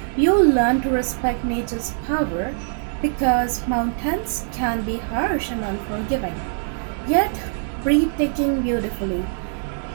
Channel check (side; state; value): left; silent; 61 dB below the other